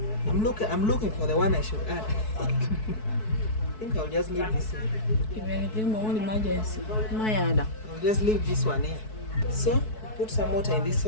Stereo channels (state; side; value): late; right; 4.6 ms